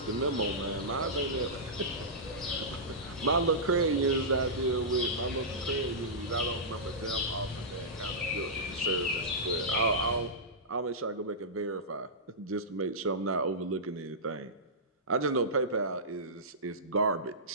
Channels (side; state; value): both; normal; correlation -0.16